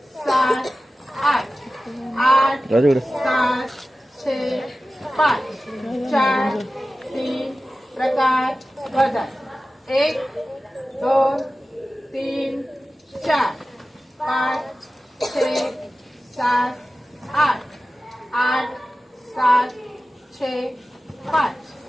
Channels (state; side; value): normal; both; correlation 0.95